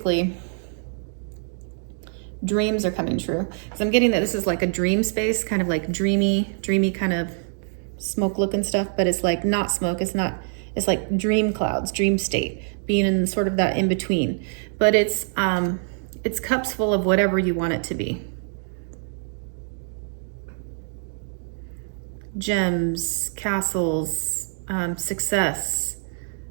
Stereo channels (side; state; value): left; silent; digital silence